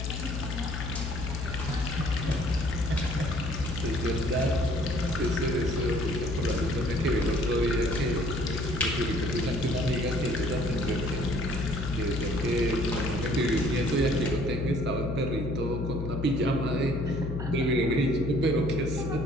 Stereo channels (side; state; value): left; noise; hum, 4 dB below the sound